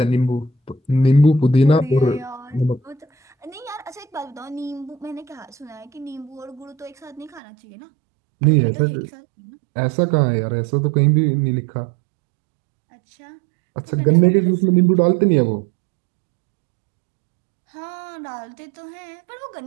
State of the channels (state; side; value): drops out; left; at 7.4 s